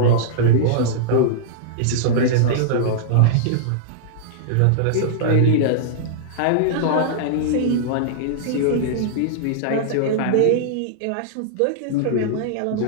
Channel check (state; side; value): different; both; correlation -0.02